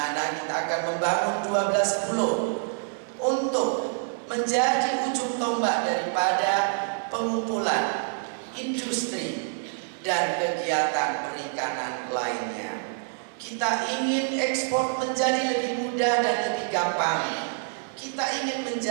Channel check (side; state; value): left; silent; digital silence